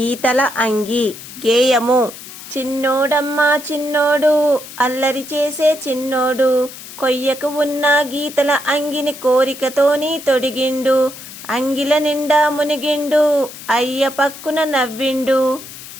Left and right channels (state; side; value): noise; left; hiss, 14 dB below the sound